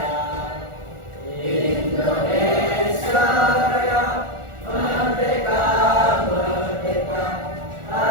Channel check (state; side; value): late; left; 1.4 ms